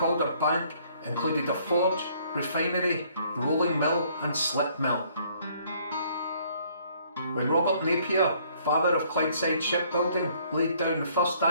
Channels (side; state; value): both; inverted; correlation -0.62